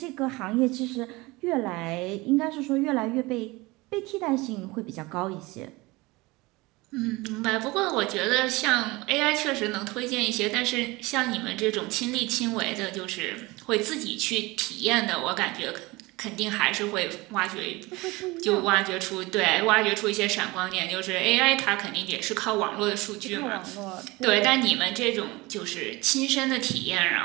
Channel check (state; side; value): quieter; left; 22.5 dB